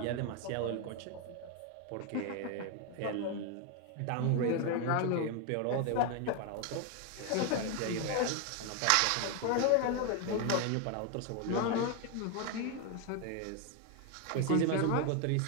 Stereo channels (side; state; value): both; different; correlation 0.01